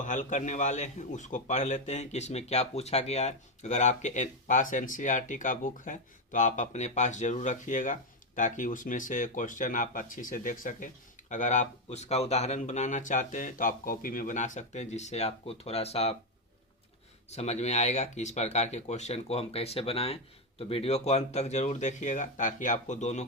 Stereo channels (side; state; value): both; normal; correlation 0.06